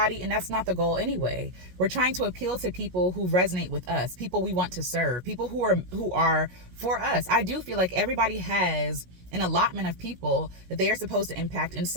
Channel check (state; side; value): late; left; 16 ms